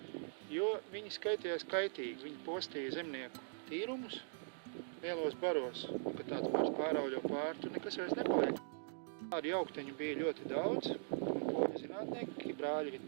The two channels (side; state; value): left; silent; digital silence